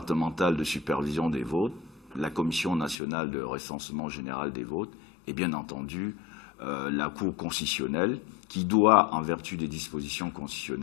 de supervision des votes, la commission nationale de recensement général des votes et bien entendu la Cour constitutionnelle qui doit, en vertu des dispositions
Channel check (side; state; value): right; drops out; at 3.0 s